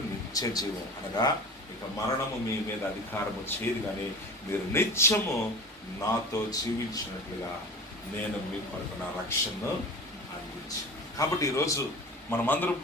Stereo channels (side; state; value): both; normal; correlation 0.35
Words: నిత్య జీవం. అనగా ఇక మరణము మీ మీద అధికారము చేయదు, కానీ మీరు నిత్యము నాతో జీవించినట్లుగా నేను మీ కొరకు నా రక్షణను అందించాను. కాబట్టి ఈరోజు మనమందరం